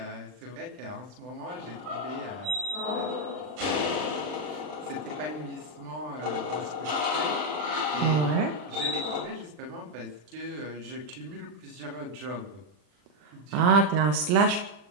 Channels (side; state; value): left; late; 40 ms